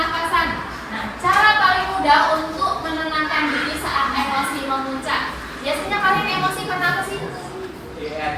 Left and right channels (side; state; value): both; identical; correlation 1.00